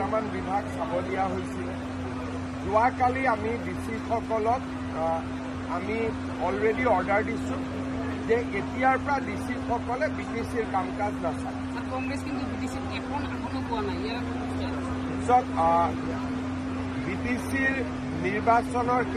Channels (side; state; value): both; identical; correlation 1.00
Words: বিভাগ চাব দিয়া হৈছিল। যোৱাকালি আমি ডিচিসকলক আমি অলৰেডি অৰ্ডাৰ দিছোঁ যে এতিয়াৰ পৰা ডিচিসকলে বিটিচিৰ কাম কাজ নাচায়। বিটিচিৰ নিৰ্বাচনৰ